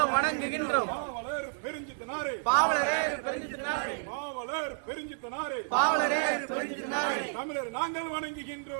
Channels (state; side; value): silent; left; digital silence